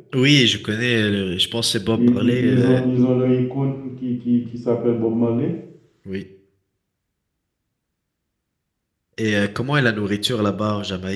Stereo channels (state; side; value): identical; both; correlation 1.00